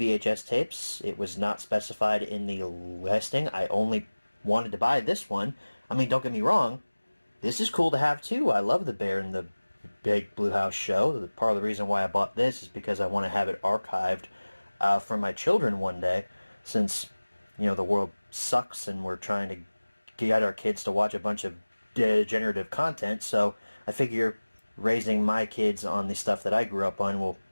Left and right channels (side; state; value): both; inverted; correlation -1.00